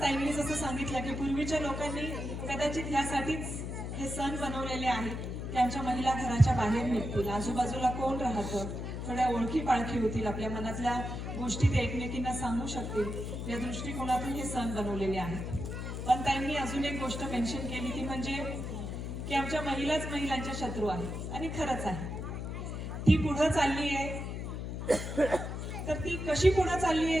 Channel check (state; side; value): noise; left; hum, 5 dB below the sound